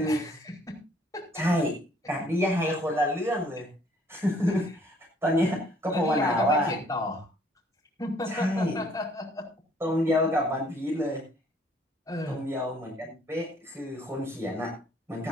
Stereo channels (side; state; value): both; normal; correlation 0.61